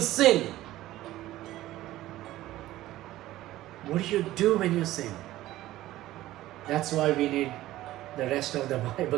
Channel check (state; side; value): quieter; left; 15.5 dB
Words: what do you do when you sin? That's why we need the rest of the